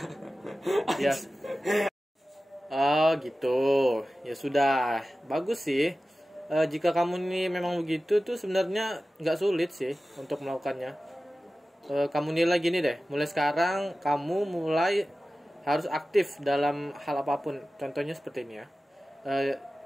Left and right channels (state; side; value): normal; both; correlation 0.95